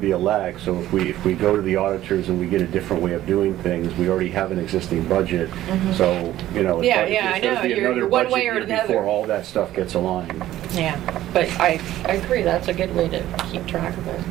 a lag, so if we go to the auditors and we get a different way of doing things, we already have an existing budget, so, you know, Yeah, it's I know. going to be You're another one budget way or year another. before all that stuff gets aligned. Yeah, but I agree, that's a good way to keep track of it.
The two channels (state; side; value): quieter; left; 13.9 dB